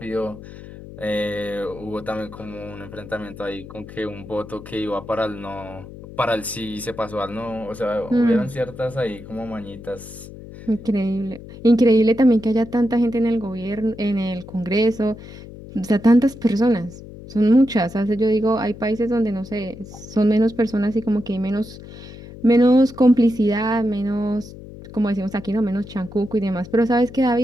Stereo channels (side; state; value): left; noise; hum, 15 dB below the sound